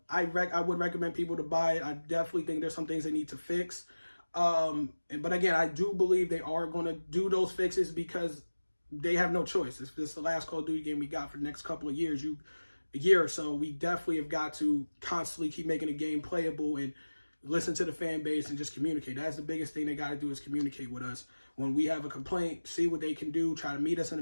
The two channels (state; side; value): inverted; both; correlation -1.00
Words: would recommend people to buy it. I definitely think there's some things they need to fix. But again, I do believe they are going to do those fixes because they have no choice. If this is the last Call of Duty game we got for the next couple of years, a year or so, we definitely have got to constantly keep making the game playable and listen to the fan base and just communicate. That's the biggest thing they got to do, is communicate with us. When we have a complaint, see what they can do, try to meet us in